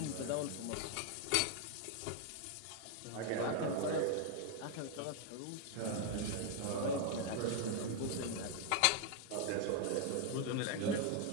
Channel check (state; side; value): different; both; correlation 0.00